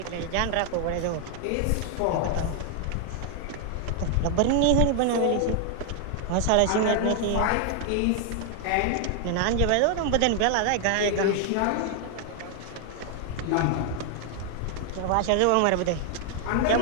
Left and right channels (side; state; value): both; different; correlation 0.00